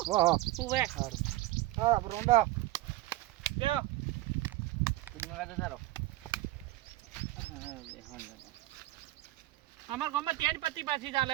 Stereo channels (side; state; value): left; quieter; 17.4 dB